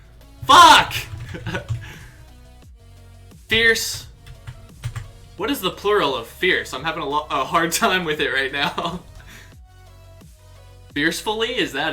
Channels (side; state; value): both; identical; correlation 1.00